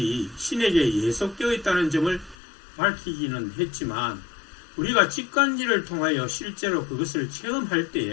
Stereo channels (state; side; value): drops out; right; at 2.4 s